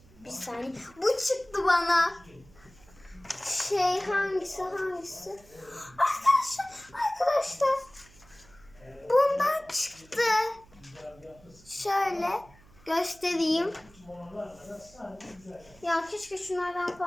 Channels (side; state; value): right; noise; hum, 26 dB below the sound